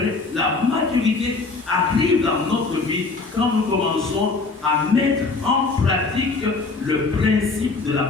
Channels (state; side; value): quieter; right; 3.9 dB